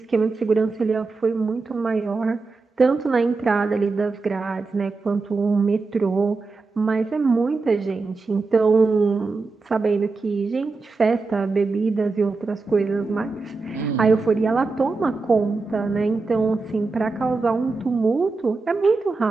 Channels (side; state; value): left; quieter; 4.0 dB